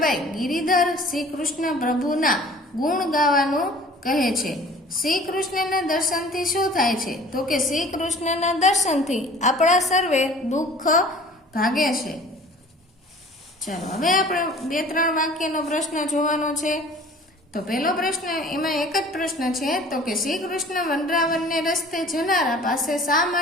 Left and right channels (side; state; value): both; normal; correlation 0.48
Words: ગિરિધર શ્રી કૃષ્ણ પ્રભુના ગુણ ગાવાનું કહે છે. શ્રી કૃષ્ણના દર્શનથી શું થાય છે? તો કે શ્રી કૃષ્ણના દર્શનથી આપણા સર્વે દુઃખ ભાગે છે. ચાલો હવે આપણે 2-3 વાક્યનો પ્રશ્ન જોવાનો છે. તો પહેલો પ્રશ્ન, એમાં એક જ પ્રશ્ન છે. તો કે શ્રી કૃષ્ણ વનરાવનને રસ્તે જનારા પાસે શા